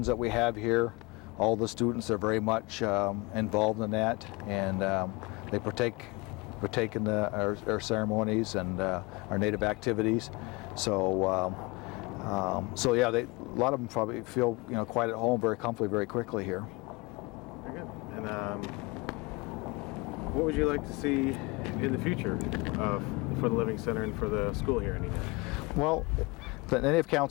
that we have here. All the students are very much involved in that, and they partake in our ceremonies and our native activities. So yeah, a lot of them probably feel, you know, quite at home, very comfortably, very quickly here. Very good. And what would you like to see in the future for the Living Center and for the school here in Nenana? Well, the Native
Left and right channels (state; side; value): quieter; right; 25.4 dB